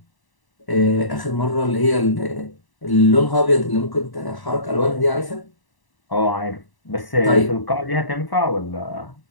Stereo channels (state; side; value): late; right; 1.0 ms